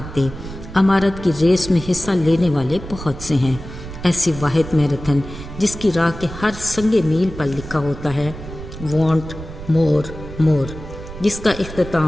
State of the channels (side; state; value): right; noise; rumble, 12 dB below the sound